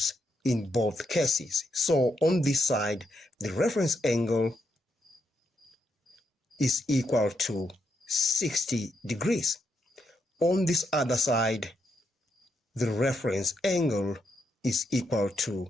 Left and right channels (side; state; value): both; normal; correlation 0.80